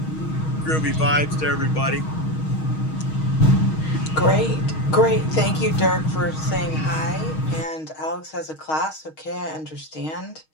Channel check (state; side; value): late; right; 6.4 ms